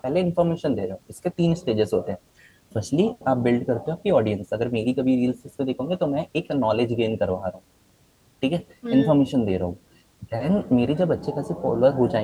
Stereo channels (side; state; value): both; identical; correlation 1.00